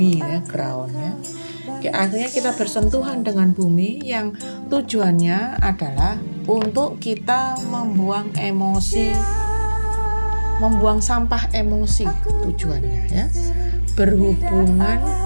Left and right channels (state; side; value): inverted; both; correlation -1.00